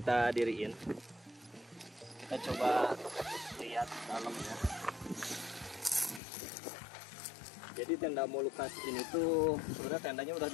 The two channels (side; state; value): right; drops out; at 6.2 s